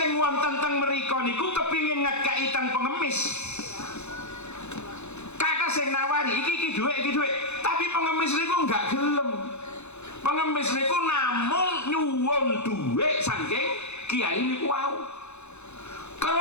wonten teng mriko niku kepingin ngekeki teng pengemis. Kakak sing nawari iki dhuwit, tapi pengemis niku enggak gelem. Pengemis niku namung nyuwun dhuwit saking kiai niku wau.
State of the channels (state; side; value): late; right; 0.81 ms